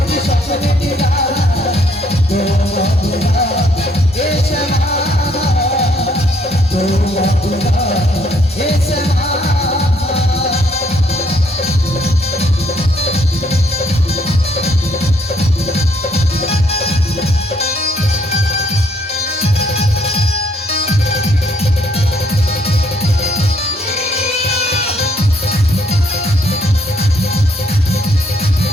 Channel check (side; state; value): both; normal; correlation 0.68